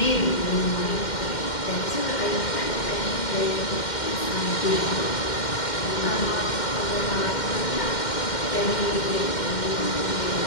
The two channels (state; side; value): late; right; 2.1 ms